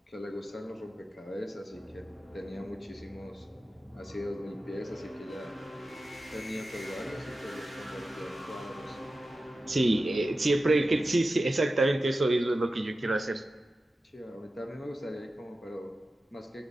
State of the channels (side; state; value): both; normal; correlation 0.93